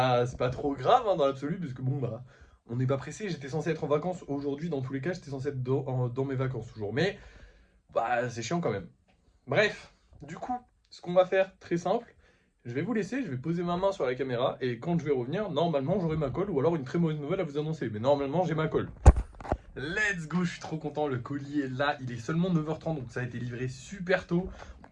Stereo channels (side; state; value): both; identical; correlation 1.00